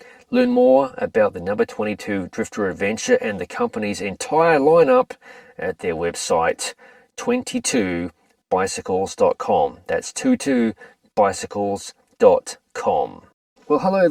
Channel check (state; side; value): identical; both; correlation 1.00